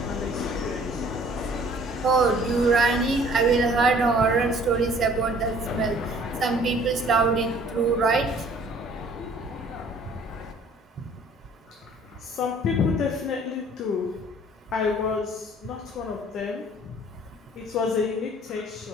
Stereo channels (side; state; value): both; normal; correlation 0.55